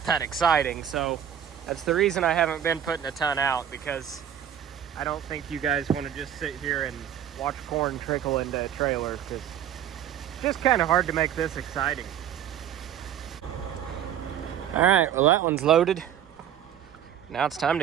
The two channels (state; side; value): quieter; left; 9.8 dB